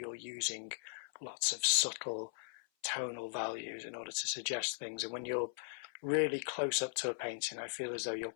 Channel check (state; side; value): silent; right; 52 dB below the other